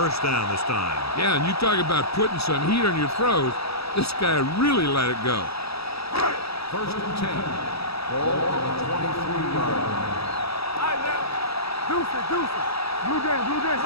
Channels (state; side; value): late; right; 0.77 ms